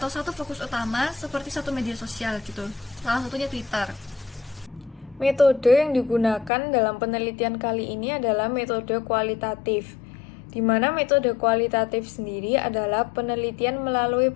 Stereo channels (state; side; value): drops out; right; at 6.5 s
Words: satu fokus utama seperti satu media sosial gitu. Salah satunya Twitter. Metode yang digunakan dalam penelitian kali ini adalah metode kualitatif, di mana metode kualitatif sendiri adalah penelitian melalui